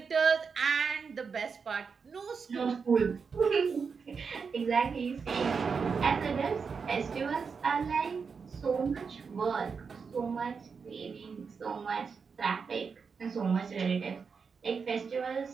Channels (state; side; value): quieter; left; 5.6 dB